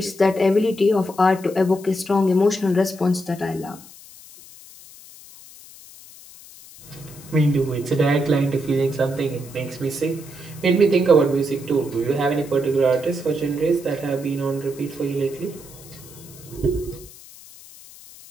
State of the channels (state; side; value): noise; left; hiss, 20 dB below the sound